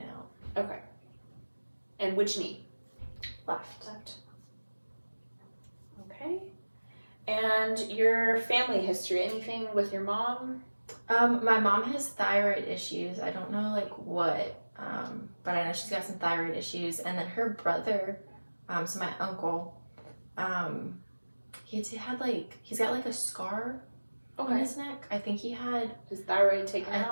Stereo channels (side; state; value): both; inverted; correlation -1.00